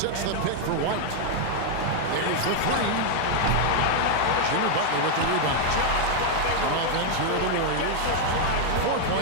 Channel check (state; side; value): different; both; correlation 0.00